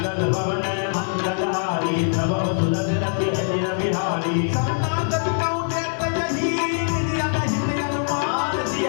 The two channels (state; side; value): silent; right; digital silence